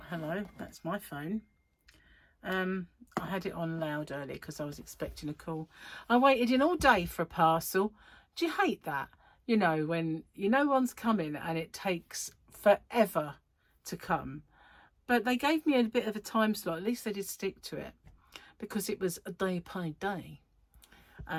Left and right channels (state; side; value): identical; both; correlation 1.00